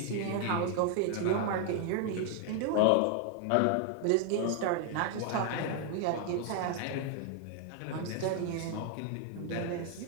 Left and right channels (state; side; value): different; both; correlation 0.00